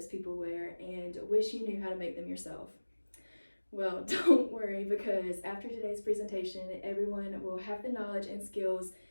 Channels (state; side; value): inverted; both; correlation -1.00